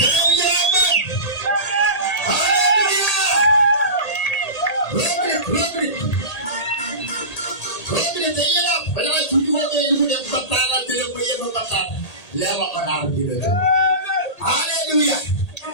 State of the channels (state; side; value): late; right; 1.8 ms